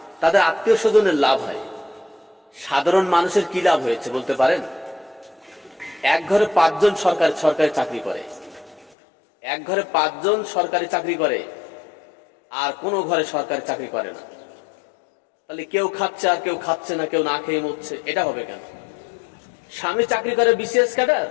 তাদের আত্মীয় স্বজনের লাভ হয়। সাধারণ মানুষের কি লাভ হয়েছে বলতে পারেন? এক ঘরে 5 জন সরকারি চাকরি করে, এক ঘরে 5 জন সরকারি চাকরি করে, আর কোনো ঘরে সরকারি চাকরি করে না। তাহলে কেউ খাচ্ছে আর কেউ খাচ্ছে না, কেউ না খেয়ে মরছে, এটা হবে কেন? স্বামী চাকরি করে বিসিএস ক্যাডার,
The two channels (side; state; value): right; drops out; at 9.0 s